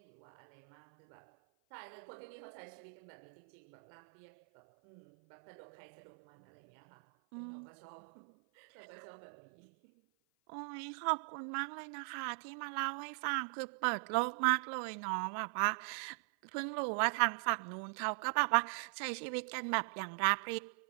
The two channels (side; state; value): left; silent; 51 dB below the other